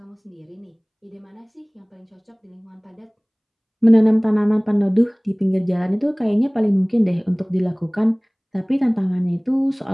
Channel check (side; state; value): both; identical; correlation 1.00